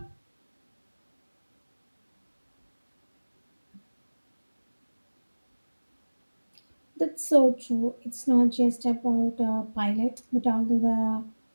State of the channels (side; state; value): both; inverted; correlation -1.00